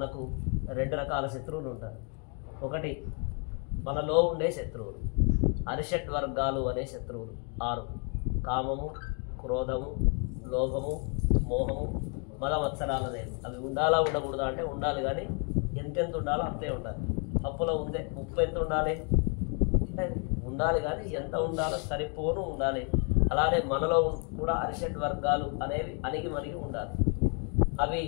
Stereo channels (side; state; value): right; quieter; 37.7 dB